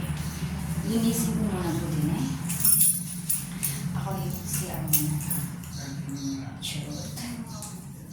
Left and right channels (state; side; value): identical; both; correlation 1.00